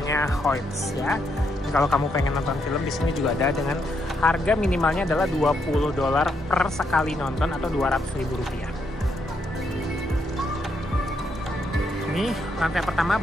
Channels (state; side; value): normal; both; correlation 0.78